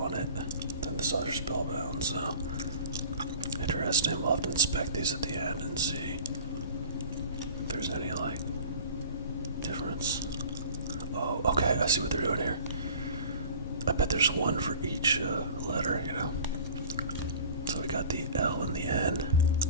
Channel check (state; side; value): inverted; both; correlation -0.43